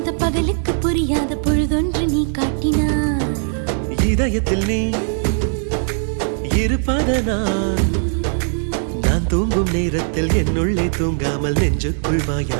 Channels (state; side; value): silent; left; 66 dB below the other